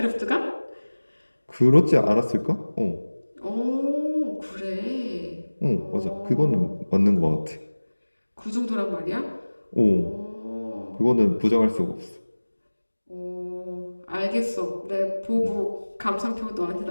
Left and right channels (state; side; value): inverted; both; correlation -1.00